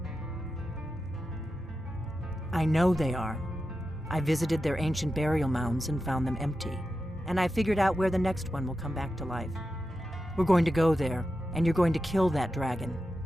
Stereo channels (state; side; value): normal; both; correlation 0.91